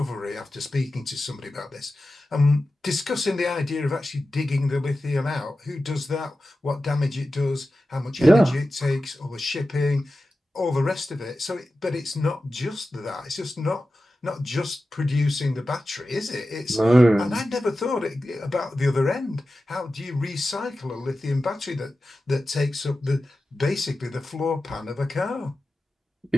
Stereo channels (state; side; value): normal; both; correlation 0.93